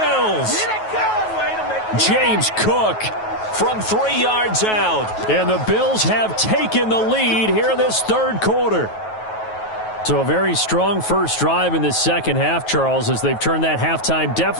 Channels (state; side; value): late; right; 9.3 ms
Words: James Cook from 3 yards out. And the Bills have taken the lead here in this third quarter. So a very strong first drive in this second half, Charles, as they've turned that halftime